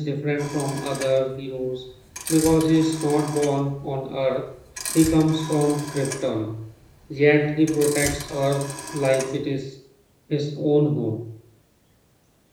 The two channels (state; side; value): identical; both; correlation 1.00